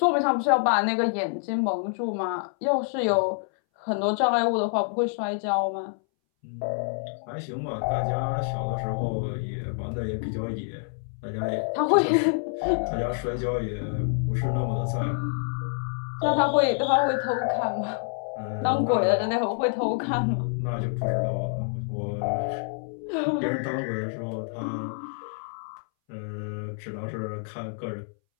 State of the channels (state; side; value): silent; right; 60 dB below the other